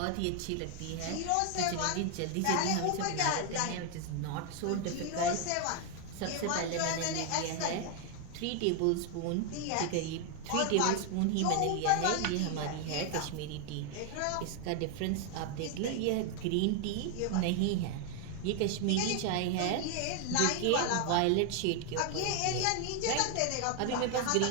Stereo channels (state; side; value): different; both; correlation 0.00